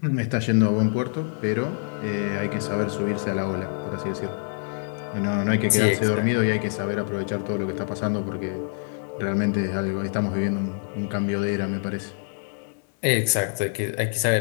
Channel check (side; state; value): right; silent; digital silence